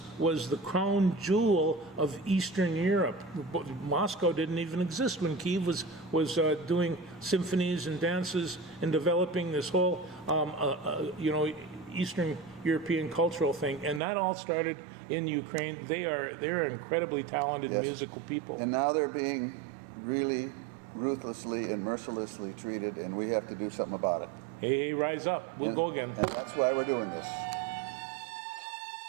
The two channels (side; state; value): left; drops out; at 14.0 s